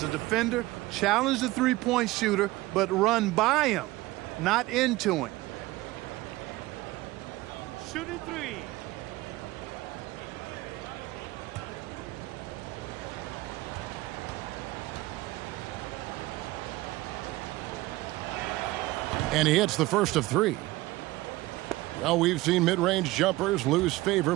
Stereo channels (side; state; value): left; quieter; 19.1 dB